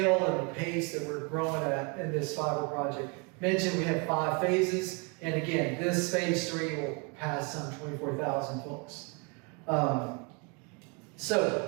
and the pace that we're growing at in this fiber project. Mentioned we have 5 phases, and again, this phase 3 will pass some 24,000 folks.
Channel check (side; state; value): left; quieter; 31.9 dB